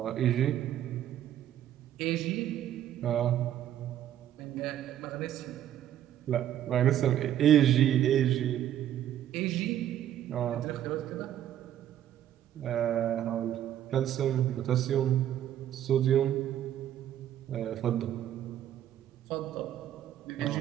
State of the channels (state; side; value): quieter; left; 11.4 dB